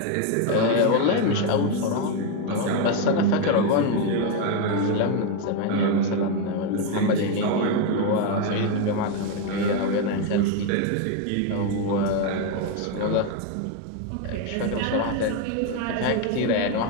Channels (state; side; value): different; both; correlation 0.01